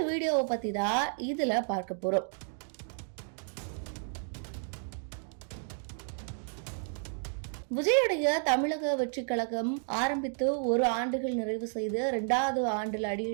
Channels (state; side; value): silent; left; 56 dB below the other